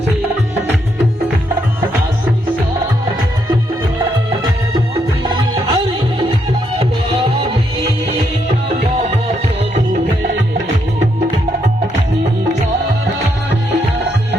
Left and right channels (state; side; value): normal; both; correlation 0.77